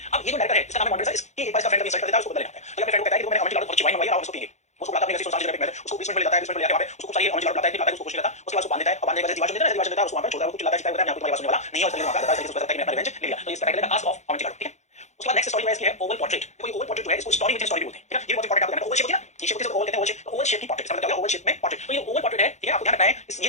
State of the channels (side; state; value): right; late; 0.33 ms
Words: अब ये जो डायरेक्टर है इसका नाम है मॉन्ट्रेसर, इसकी एक बार इसका फ्रेंड का इंसल्ट कर देता है, उसको बदला लेना है। तो अपने फ्रेंड को कहता है कि मैंने Amontillado बहुत अच्छी वाइन मंगाई और उसको पिएंगे, उसको बुलाता है अपनी सोसाइटी जगह पे, उसको बेसमेंट में ले जाता है, बेसमेंट में ले जाके वहां पे उसको चाहिए Amontillado लाता है, निकलता है, उसको कुछ नहीं लाता, उसके बाद उसको बांध देता है और बांधने के बाद दीवार देता है, दीवार देता है, उसको वहां पे छोड़ता है, वो चिल्लाता है, चिल्लाता है, मैं आपको तुम्हारी बात सुनने वाला नहीं है, और इसलिए वहां पे आता है, इसलिए उसको कहता है कि मैं अपना रिवेंज ले लिया। तो इस टाइटल का कास्ट ऑफ Amontillado, ठीक है। उसके बाद नेक्स्ट स्टोरी है इसकी है ओवल पोर्ट्रेट। देखो ये ओवल पोर्ट्रेट जो है इसको स्टोरी विद इन स्टोरी बोलते हैं, ठीक है। ये बहुत इंपॉर्टेंट आपको ओवल शेप होती है ना, ये शेप किसे ओवल कहते हैं, ओवल शेप, ओवल शेप की पोर्ट्रेट, इसका मतलब क्या है ओवल शेप में पोर्ट्रेट। तो ये ओवल पोर्ट्रेट है, ठीक है, आपको ध्यान रखना है ये